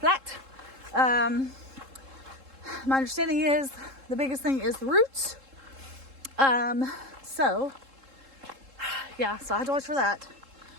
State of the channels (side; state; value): left; late; 3.7 ms